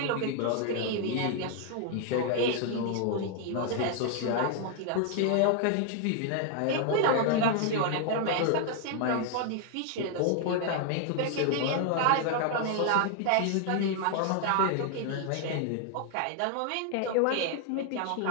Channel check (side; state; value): both; different; correlation 0.00